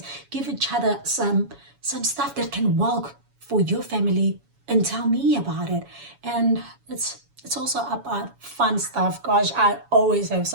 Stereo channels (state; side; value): late; left; 7.1 ms